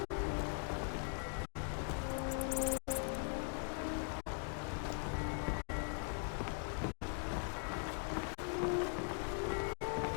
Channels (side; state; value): right; silent; 50 dB below the other